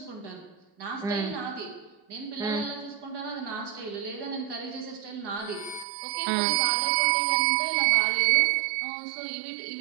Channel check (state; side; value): drops out; left; at 5.9 s